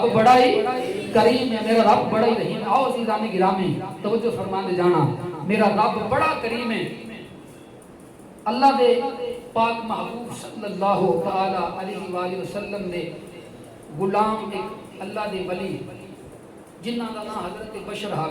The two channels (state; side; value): identical; both; correlation 1.00